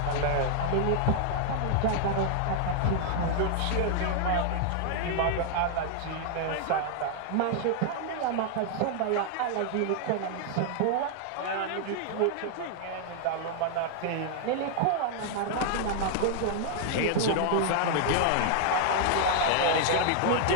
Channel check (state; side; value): different; both; correlation 0.00